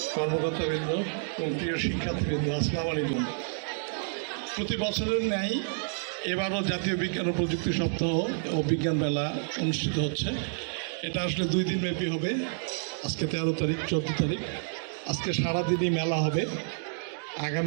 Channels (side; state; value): left; silent; digital silence